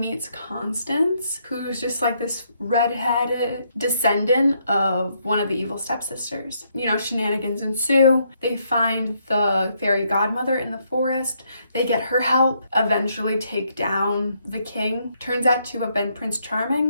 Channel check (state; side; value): inverted; both; correlation -0.74